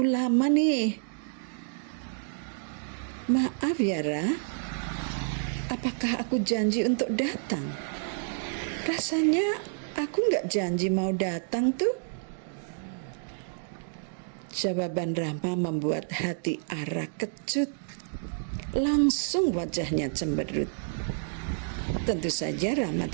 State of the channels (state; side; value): silent; left; digital silence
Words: lama nih." "Maaf ya Ra, apakah aku janji untuk datang? Rasanya aku nggak janji mau datang tuh." Jawaban Rama membuat hati Ara kecut. Langsung wajahnya cemberut. Tentu saja Rama